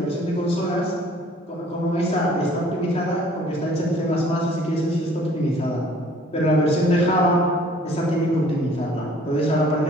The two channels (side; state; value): both; normal; correlation 0.55